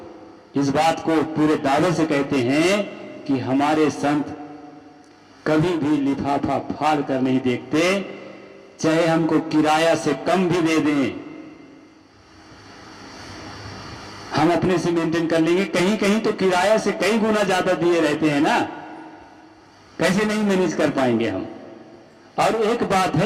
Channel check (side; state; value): both; identical; correlation 1.00